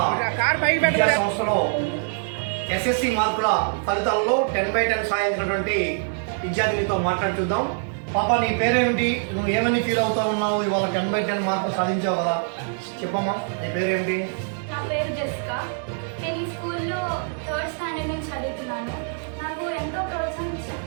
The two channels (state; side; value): silent; left; 58 dB below the other